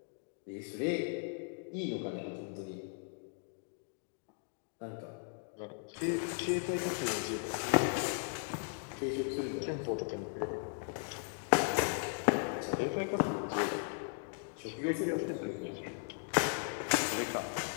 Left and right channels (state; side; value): quieter; right; 39.9 dB